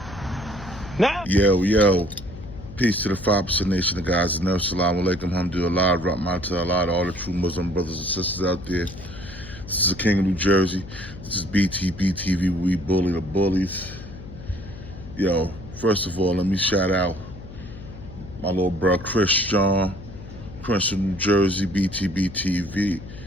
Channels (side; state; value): left; noise; hum, 14 dB below the sound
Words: Now, Yo. Peace to the 5% Nation of guys. Assalamu alaikum, alhamdulillah, rahmatullah, to all the true Muslim brothers and sisters out there. This is the King of New Jersey. This is BTB TV. We bully the bullies. Yo, first of all, let me shout out my little bro Chris from New Jersey, BTB TV,